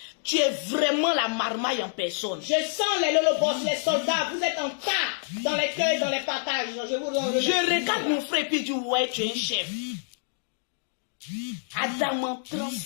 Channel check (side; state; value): right; silent; digital silence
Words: Tu es vraiment la marmaille en personne. Je sens les lolobos, les soldats, vous êtes en tas dans les cueils, dans les partages. Je regarde mon frère et puis je dis, ouais, tu es un chef. Adam